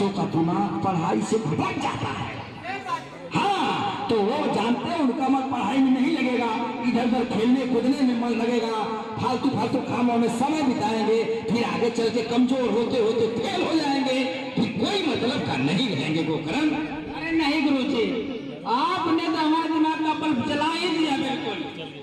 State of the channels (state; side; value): identical; both; correlation 1.00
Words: का दिमाग पढ़ाई से भटक जाता है। हाँ, तो वो जानते हैं उनका मन पढ़ाई में नहीं लगेगा, इधर उधर खेलने कूदने में मन लगेगा, फालतू फालतू कामों में समय बिताएंगे, फिर आगे चल के कमजोर होते होते फेल हो जाएंगे, फिर कोई मतलब का नहीं रहेंगे गोकर्ण। अरे नहीं गुरुजी, आपने तो हमारे दिमाग का बल्ब जला ही दिया बिल्कुल।